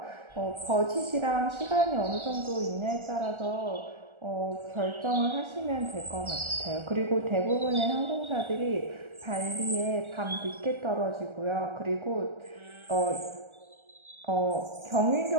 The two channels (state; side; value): late; left; 1.4 ms